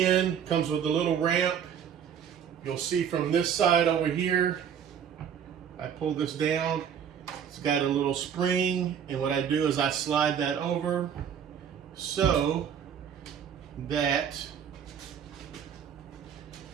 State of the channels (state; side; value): quieter; left; 8.3 dB